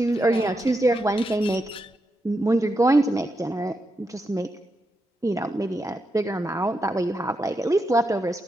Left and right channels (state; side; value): normal; both; correlation 0.85